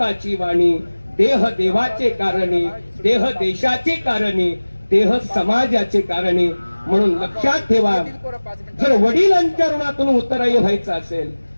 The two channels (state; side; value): inverted; both; correlation -1.00